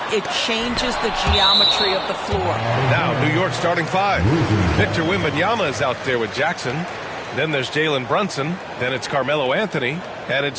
it changes the geometry of the floor. Now, New York starting five. Victor Wembanyama is out there with Jackson. Then there's Jalen Brunson. Then it's Carmelo Anthony. And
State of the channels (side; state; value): both; identical; correlation 1.00